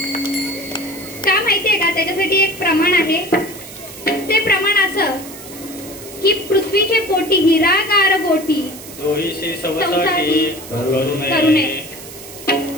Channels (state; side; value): noise; right; hiss, 15 dB below the sound